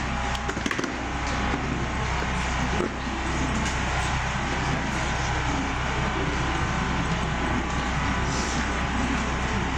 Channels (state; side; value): identical; both; correlation 1.00